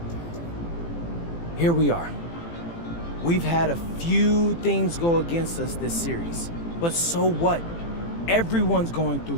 here we are. We've had a few things go against us this series, but so what? Everyone's going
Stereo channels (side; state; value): right; late; 18 ms